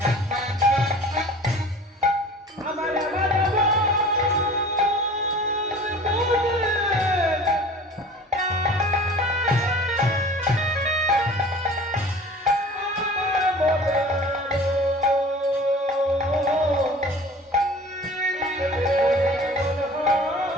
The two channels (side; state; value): both; normal; correlation 0.43